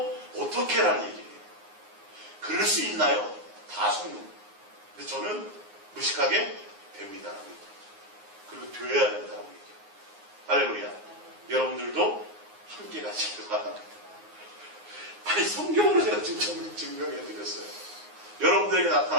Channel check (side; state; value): left; late; 9.6 ms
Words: 어떻게라는 얘기예요. 그럴 수 있나요? 다 속는 거예요. 근데 저는 무식하게 됩니다라고 얘기해요. 그리고 되어야 된다고 얘기해요. 할렐루야. 여러분들도 함께 가시길 바랍니다. 아니 성경으로 제가 지금 증명해 드렸어요. 여러분들에게